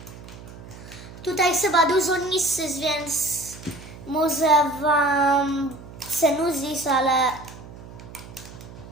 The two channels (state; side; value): noise; right; hum, 16 dB below the sound